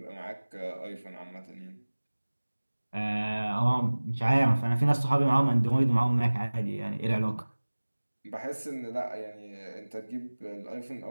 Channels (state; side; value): inverted; both; correlation -1.00